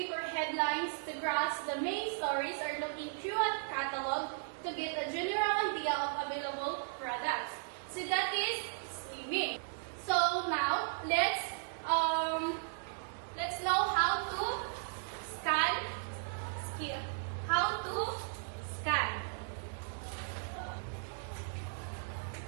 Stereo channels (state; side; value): silent; left; digital silence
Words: headlines to grasp the main stories or looking through a catalog to get a general idea of available products. So that is skimming. let's know how to scan. How to scan.